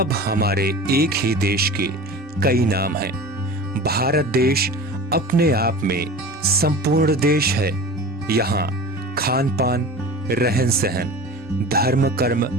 हमारे एक ही देश के कई नाम हैं। भारत देश अपने आप में संपूर्ण देश है। यहाँ खान पान, रहन सहन, धर्म कर्म,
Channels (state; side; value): normal; both; correlation 0.35